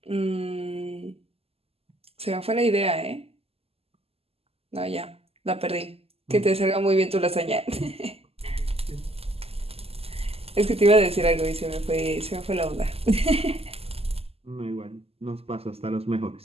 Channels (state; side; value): late; left; 0.29 ms